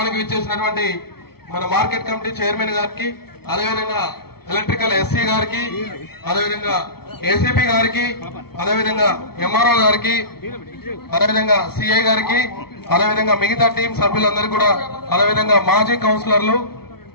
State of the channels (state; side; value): late; right; 0.95 ms